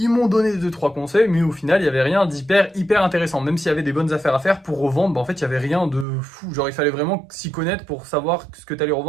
Ils m'ont donné 2-3 conseils, mais au final, il n'y avait rien hyper intéressant. Même s'il y avait des bonnes affaires à faire pour revendre, bah en fait, il n'y avait rien de fou. Genre, il fallait vraiment s'y connaître pour savoir ce que tu allais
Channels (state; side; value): drops out; left; at 6.1 s